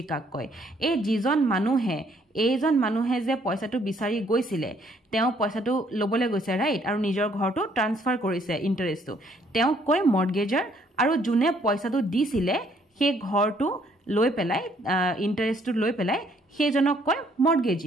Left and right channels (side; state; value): both; normal; correlation 0.66